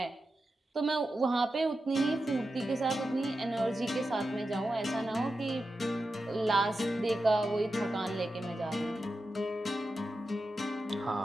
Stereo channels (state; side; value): normal; both; correlation 0.90